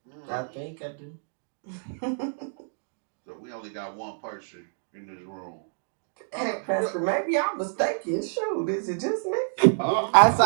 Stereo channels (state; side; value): silent; left; digital silence